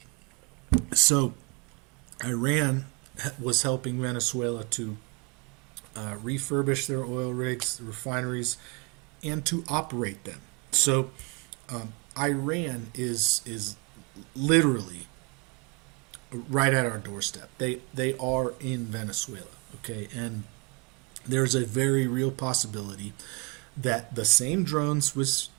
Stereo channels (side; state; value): left; quieter; 28.5 dB